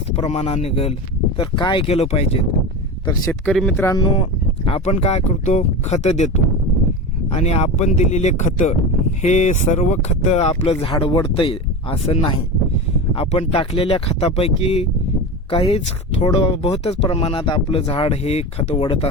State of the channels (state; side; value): normal; both; correlation 0.25